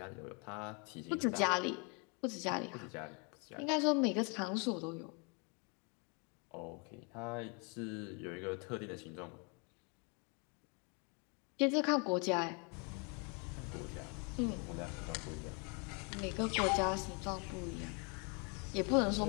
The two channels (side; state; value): right; quieter; 34.0 dB